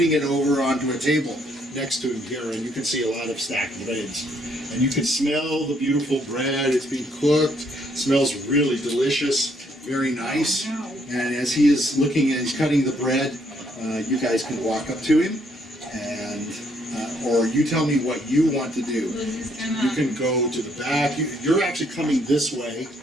it over onto a table next to him here, and you can see a lot of stacked breads. And you can smell the beautiful bread. It's being cooked. It smells really delicious, very nice. And as he is looking and he's cutting the bread, you guys can walk up to him, and or you tell me what you want to do. Lizzie's You gonna. can go to the back. You're actually coming this way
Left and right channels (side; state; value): both; normal; correlation 0.69